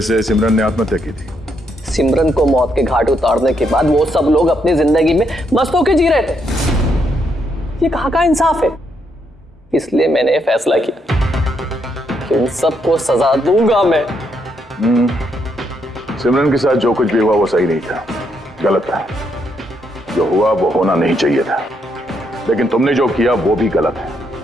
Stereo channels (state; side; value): normal; both; correlation 0.77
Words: से सिमरन ने आत्महत्या की थी। सिमरन को मौत के घाट उतारने के बाद वो सब लोग अपनी जिंदगी में मस्त होकर जी रहे थे। ये कहाँ का इंसाफ है? इसलिए मैंने फैसला किया कि उन सबको सजा दूंगा मैं। सिमरन के साथ जो कुछ भी हुआ वो सही नहीं था, गलत था। जो हुआ वो होना नहीं चाहिए था, लेकिन तुमने जो किया वो भी गलत है।